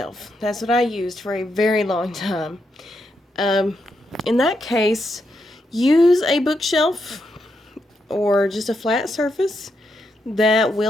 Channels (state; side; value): normal; both; correlation 0.82